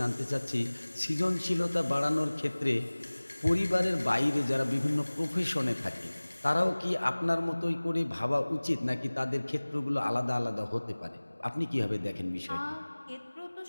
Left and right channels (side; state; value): both; inverted; correlation -1.00